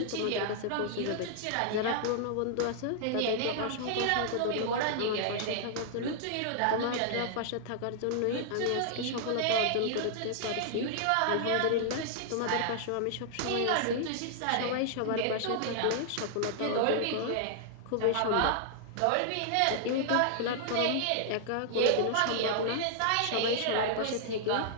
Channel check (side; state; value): both; different; correlation -0.01